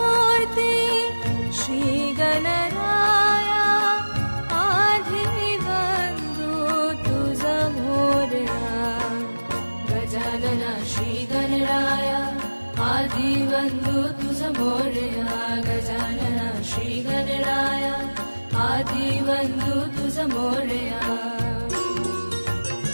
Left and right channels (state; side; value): inverted; both; correlation -1.00